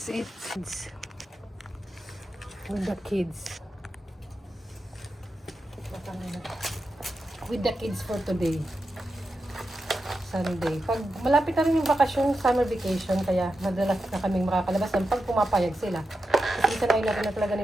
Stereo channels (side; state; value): both; normal; correlation 0.89